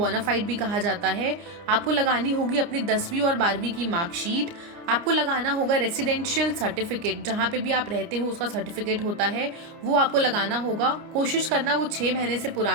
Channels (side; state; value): left; late; 29 ms